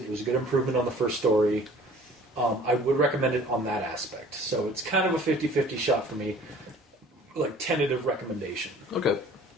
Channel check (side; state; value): both; normal; correlation 0.50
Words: It was a good improvement on the first story. I would recommend it on that aspect. So it's kind of a 50-50 shot for me. Like tentative recommendation. Okay,